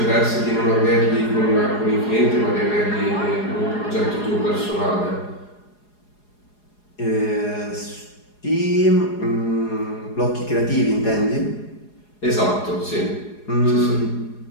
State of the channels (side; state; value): right; late; 4.8 ms